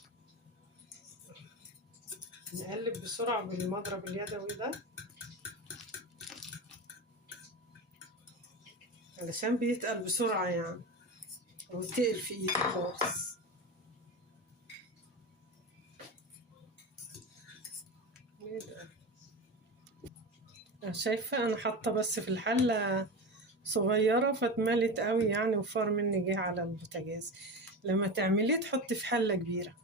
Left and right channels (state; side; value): normal; both; correlation 0.23